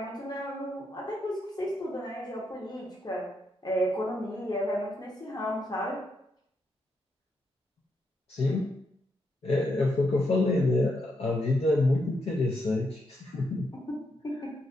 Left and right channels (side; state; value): both; normal; correlation 0.80